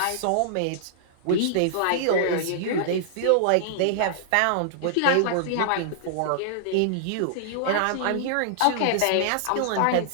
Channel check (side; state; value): both; different; correlation -0.01